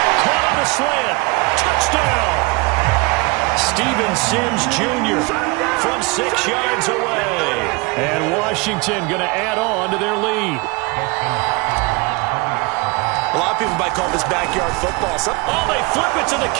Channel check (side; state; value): left; quieter; 27.1 dB